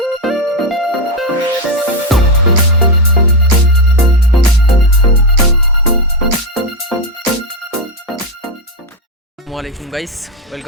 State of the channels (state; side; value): normal; both; correlation 0.09